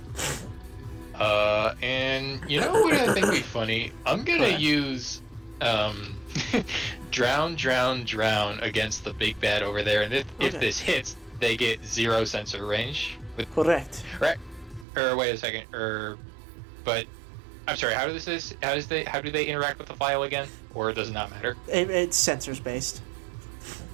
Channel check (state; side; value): drops out; left; at 14.9 s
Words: And you know what I think would be funny? I'm gonna use drown against the big bad over there, and if Okay. this hits, they get 0 sensor range. Correct. Or wait a second, but I'm sorry. How do they interact with the file again? Or does it not matter? It's sensors based.